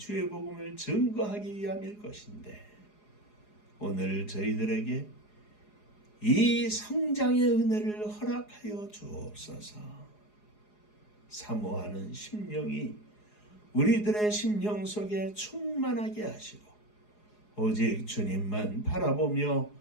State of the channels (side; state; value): right; late; 4.8 ms